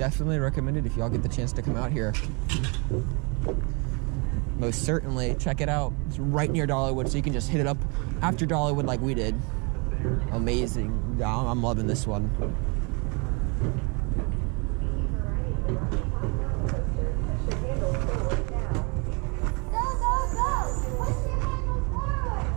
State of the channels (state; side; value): quieter; left; 32.0 dB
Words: recommend it if y'all get the chance to come out here. Most certainly. Check it out. It's right near Dollywood, so you can just hit it up after Dollywood like we did. Amazing. I'm loving this one.